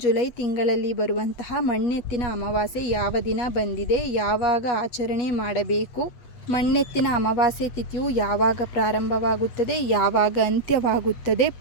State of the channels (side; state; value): right; late; 8.2 ms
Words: ಜುಲೈ ತಿಂಗಳಲ್ಲಿ ಬರುವಂತಹ ಮಣ್ಣೆತ್ತಿನ ಅಮಾವಾಸ್ಯೆ ಯಾವ ದಿನ ಬಂದಿದೆ, ಯಾವಾಗ ಆಚರಣೆ ಮಾಡಬೇಕು, ಮಣ್ಣೆತ್ತಿನ ಅಮಾವಾಸ್ಯೆ ತಿಥಿಯು ಯಾವಾಗ ಪ್ರಾರಂಭವಾಗುತ್ತದೆ, ಯಾವಾಗ ಅಂತ್ಯವಾಗುತ್ತದೆ,